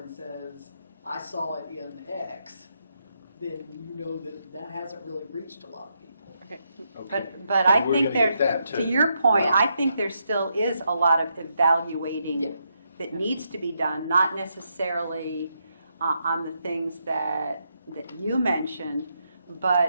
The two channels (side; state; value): both; inverted; correlation -0.80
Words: and says, I saw it in X, then you know that hasn't really reached a lot of people. Okay. But I We're think gonna get there, that, to too. your point, I think there still is a lot of Yeah. evaluating that needs to be done, not necessarily on the things that you mentioned,